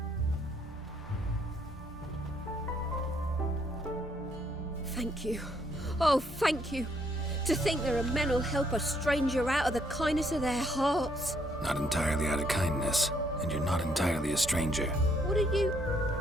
Thank you. Oh, thank you. To think there are men who'll help a stranger out of the kindness of their hearts. Not entirely out of kindness, and you're not entirely a stranger. What are you...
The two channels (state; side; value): normal; both; correlation 0.70